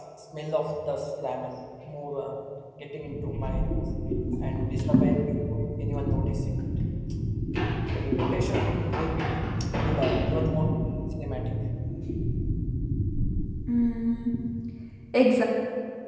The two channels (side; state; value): both; identical; correlation 1.00